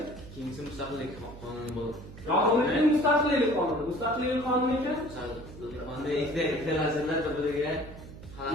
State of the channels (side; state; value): right; noise; hum, 15 dB below the sound